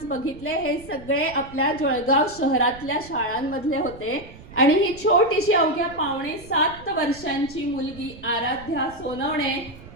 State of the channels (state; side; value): noise; right; rumble, 18 dB below the sound